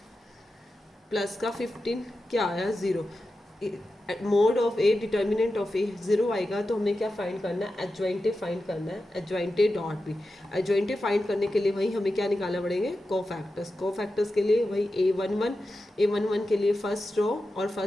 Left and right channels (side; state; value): both; normal; correlation 0.91